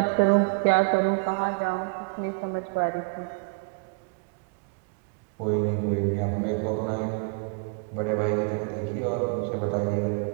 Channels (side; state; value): left; quieter; 34.7 dB